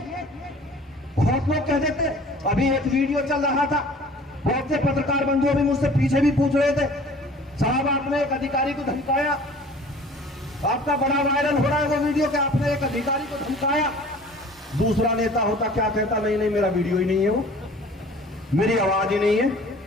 बहुत लोग कह देते, अभी एक वीडियो चल रहा था, बहुत से पत्रकार बंधु भी मुझसे पीछे भी पूछ रहे थे, साहब आपने एक अधिकारी को धमकाया, आपका बड़ा वायरल हो रहा है वो वीडियो कि आपने एक अधिकारी को धमकाया। दूसरा नेता होता क्या कहता, नहीं नहीं मेरा वीडियो ही नहीं है, वो मेरी आवाज ही नहीं है।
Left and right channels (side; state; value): both; normal; correlation 0.48